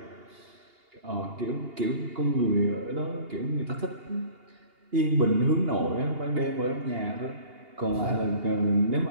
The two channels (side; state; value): left; late; 2.8 ms